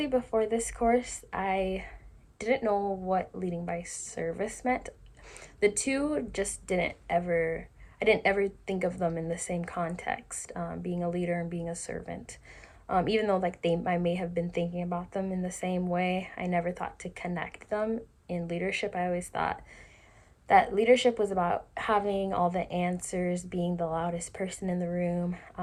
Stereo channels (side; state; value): both; identical; correlation 1.00